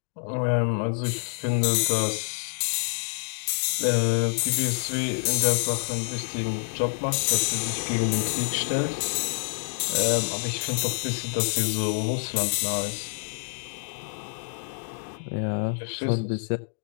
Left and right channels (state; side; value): silent; right; digital silence